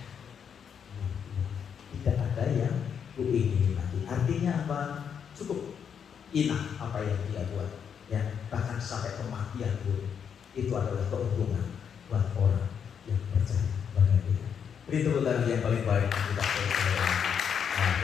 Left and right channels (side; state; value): right; quieter; 7.5 dB